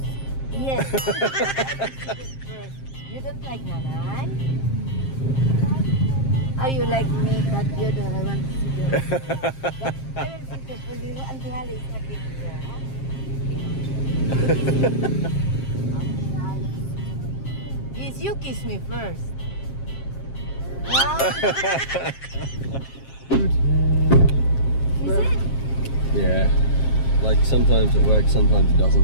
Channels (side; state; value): right; late; 7.5 ms